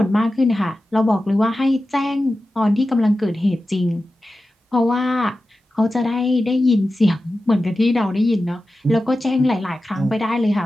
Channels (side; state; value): both; normal; correlation 0.94